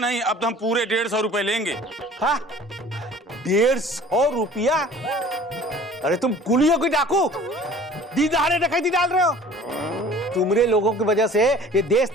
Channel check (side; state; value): both; normal; correlation 0.47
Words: अब तो हम पूरे 150 रुपए लेंगे। हाँ 150 रुपया? अरे तुम कुलियों की डाकू, दीदारे डकैती डाल रहे हो। तुमरे लोगों की वजह से ये देश